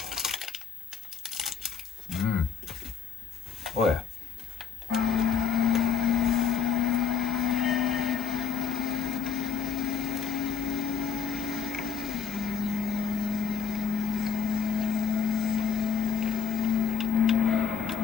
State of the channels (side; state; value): right; quieter; 6.9 dB